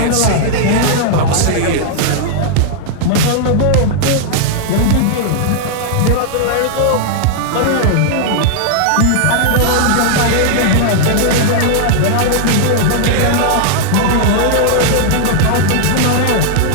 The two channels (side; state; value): both; different; correlation -0.01